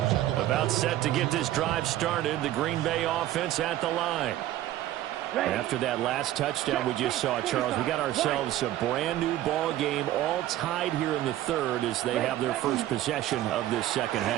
About set to get this drive started, the Green Bay offense at the line. After that last touchdown we just saw, Charles, we got ourselves a brand new ball game, all tied here in the 3rd as they have their first possession of this second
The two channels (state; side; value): quieter; left; 13.8 dB